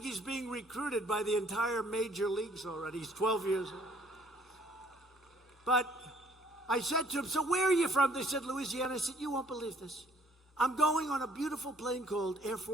he's being recruited by the entire major leagues already. He's 12 years old. But I said to him, so where are you from? They said, Louisiana. I said, you won't believe this. I'm going on a beautiful plane called Air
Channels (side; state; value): both; normal; correlation 0.61